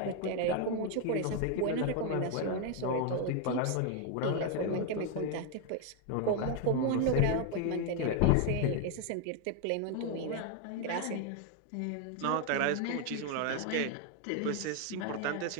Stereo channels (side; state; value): both; different; correlation 0.01